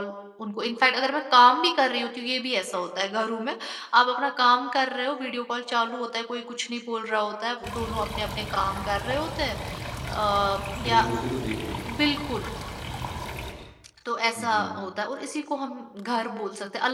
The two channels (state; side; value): identical; both; correlation 1.00